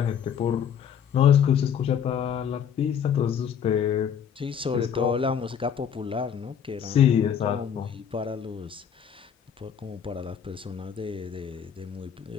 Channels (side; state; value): right; quieter; 8.1 dB